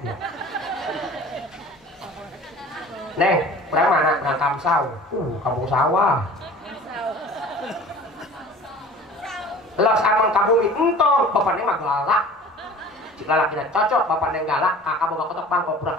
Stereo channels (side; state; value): both; normal; correlation 0.43